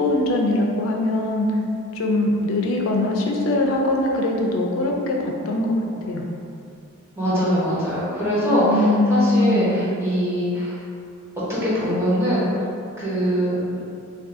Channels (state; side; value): normal; both; correlation 0.46